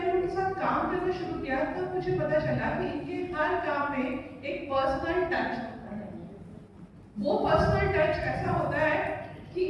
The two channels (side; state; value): both; identical; correlation 1.00